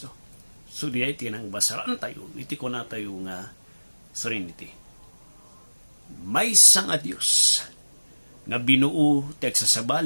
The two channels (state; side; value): inverted; both; correlation -1.00